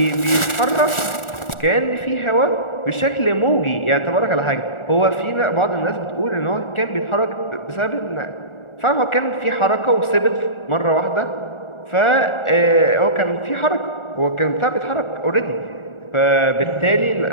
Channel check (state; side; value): late; right; 1.4 ms